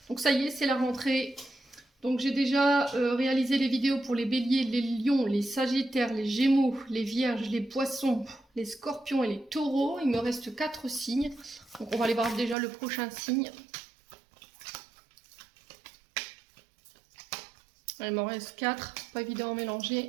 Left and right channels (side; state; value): left; drops out; at 12.6 s